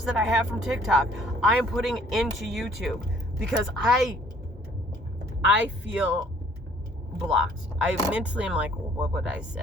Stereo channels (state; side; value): normal; both; correlation 0.59